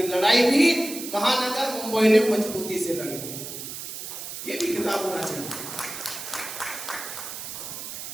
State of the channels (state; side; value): noise; right; hiss, 9 dB below the sound